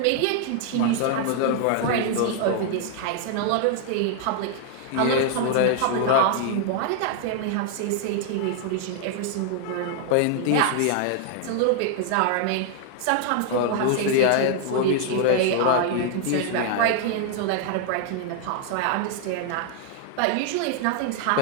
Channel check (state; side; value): different; both; correlation 0.00